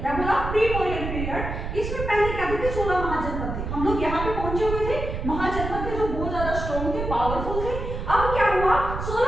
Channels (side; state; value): right; noise; rumble, 5 dB below the sound